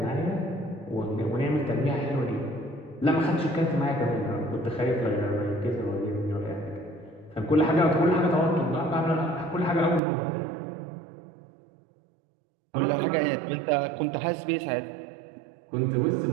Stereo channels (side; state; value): left; drops out; at 10.0 s